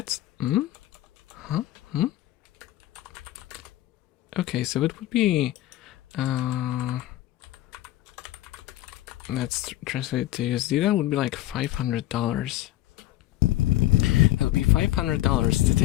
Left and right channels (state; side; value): quieter; right; 15.1 dB